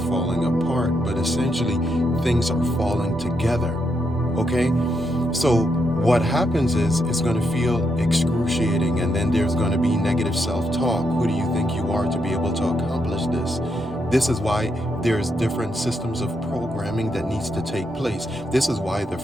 apart, but essentially things are falling together. Okay? So what happens is it's going to feel excruciating, and then there's going to be negative self-talk. Who do you think you are to be able to accomplish this? This is why there's different systems of programming that needs to take place. This is why the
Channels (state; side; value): normal; both; correlation 0.80